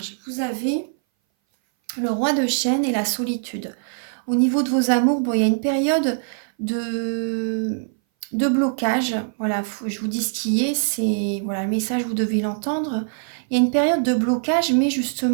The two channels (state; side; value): silent; left; 60 dB below the other